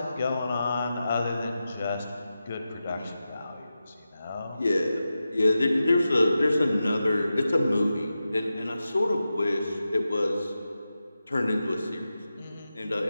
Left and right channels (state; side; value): inverted; both; correlation -0.92